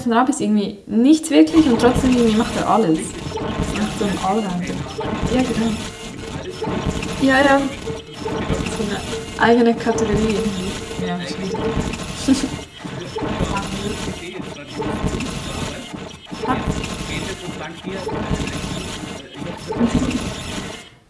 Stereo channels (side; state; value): both; identical; correlation 1.00